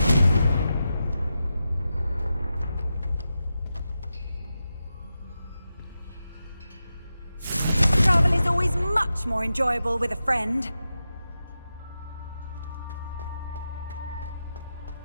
Travel is always much more enjoyable with a friend.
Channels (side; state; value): both; inverted; correlation -0.90